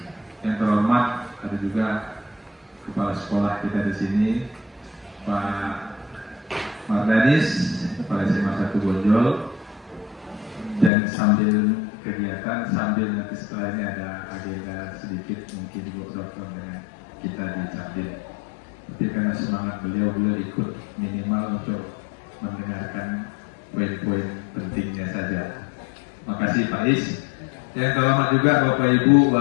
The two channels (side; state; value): right; drops out; at 10.9 s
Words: yang terhormat ada juga kepala sekolah kita di sini, Pak Mardanis, Kepala SMA 1 Bonjol. Dan sambil kegiatan, sambil nanti setelah ini ada agenda sedikit mungkin Bu Dokter dengan kita di Capdim. Tapi karena semangat beliau ikut minimal untuk mendengarkan poin-poin pentingnya saja. Makasih Pak Is. Yang terhormat juga Bapak Ibu